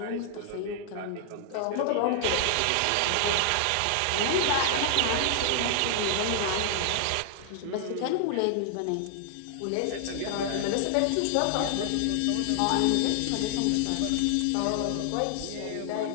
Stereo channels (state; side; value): different; both; correlation 0.00